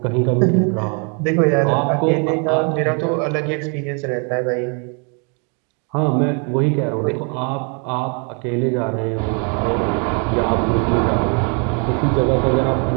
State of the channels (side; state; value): left; quieter; 36.9 dB